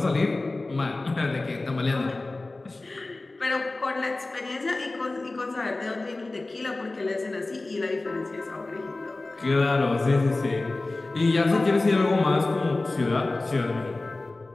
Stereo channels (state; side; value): quieter; right; 3.1 dB